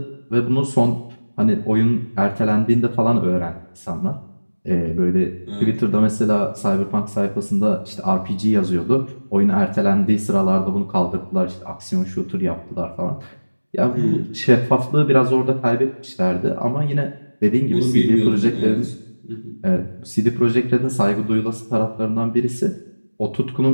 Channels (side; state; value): both; inverted; correlation -1.00